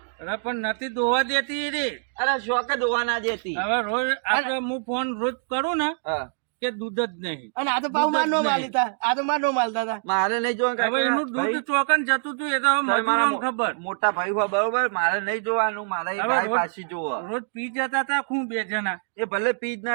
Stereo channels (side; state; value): left; silent; digital silence